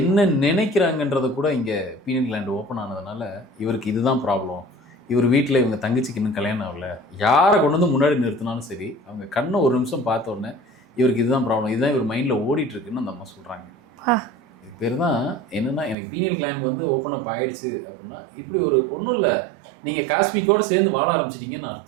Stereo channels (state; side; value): drops out; left; at 16.0 s